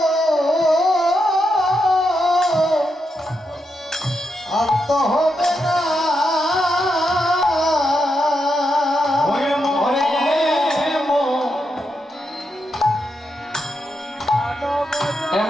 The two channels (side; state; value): both; normal; correlation 0.84